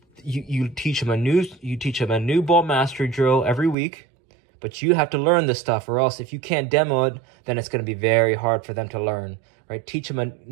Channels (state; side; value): drops out; left; at 3.8 s